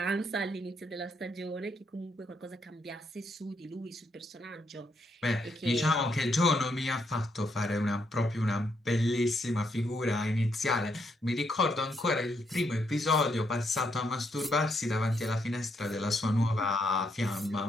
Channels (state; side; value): normal; both; correlation 0.76